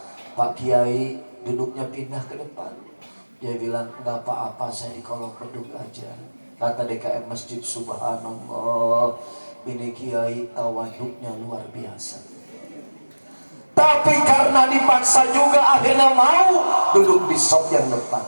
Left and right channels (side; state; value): both; inverted; correlation -1.00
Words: Pak Kiai duduknya pindah ke depan. Dia bilang, nggak apa-apa, saya di kolong beduk aja. Kata DKM masjid, subhanallah, ini kiai tawaduknya luar biasa. Tapi karena dipaksa juga akhirnya mau duduk di sop yang depan.